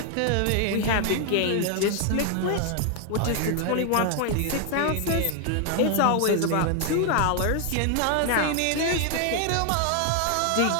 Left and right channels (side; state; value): both; different; correlation 0.00